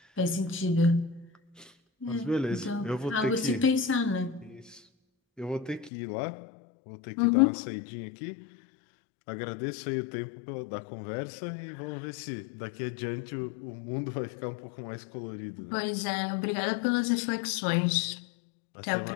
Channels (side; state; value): right; drops out; at 5.9 s